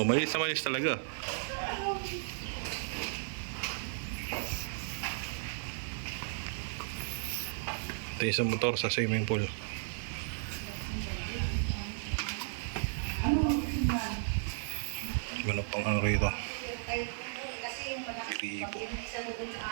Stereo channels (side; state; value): left; silent; digital silence